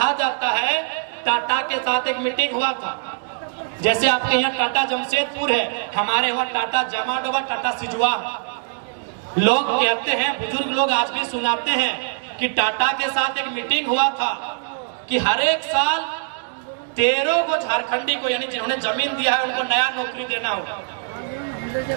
जाता है टाटा के साथ एक मीटिंग हुआ था जैसे आपके यहाँ टाटा जमशेदपुर है, हमारे वहाँ टाटा जमाडोबा, टाटा सिजुआ। लोग कहते हैं, बुजुर्ग लोग आज भी सुनाते हैं कि टाटा के साथ एक मीटिंग हुआ था कि हर एक साल 13 को झारखंडी को, यानी जिन्होंने जमीन दिया है उनको नया नौकरी देना होगा।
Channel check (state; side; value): silent; left; digital silence